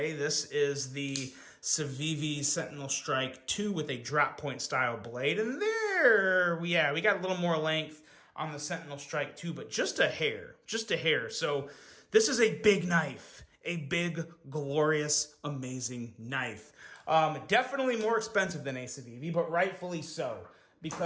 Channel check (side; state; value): both; identical; correlation 1.00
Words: This is the Civivi Sentinel Strike 2 with a drop point style blade. And there, we got a little more length on the Sentinel Strike 2, but just a hair. So this is a big knife. A big, glorious, amazing knife. Definitely more expensive than a Civivi, but rightfully so,